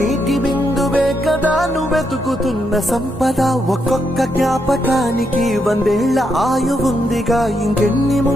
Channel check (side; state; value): both; normal; correlation 0.80